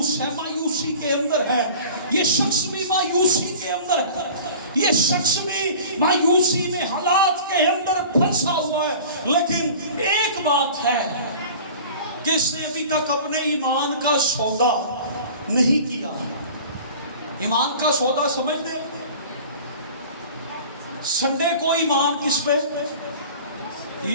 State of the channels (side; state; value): both; inverted; correlation -0.42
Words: ہے, مایوسی کے اندر ہے. یہ شخص بھی مایوسی کے اندر ہے, یہ شخص بھی مایوسی میں حالات کے اندر پھنسا ہوا ہے. لیکن ایک بات ہے کہ اس نے ابھی تک اپنے ایمان کا سودا نہیں کیا. ایمان کا سودا سمجھ دیں, سنڈے کو ایمان کس پہ؟